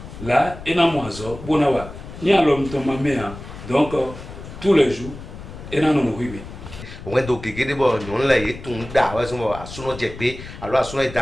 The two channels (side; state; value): left; noise; rumble, 13 dB below the sound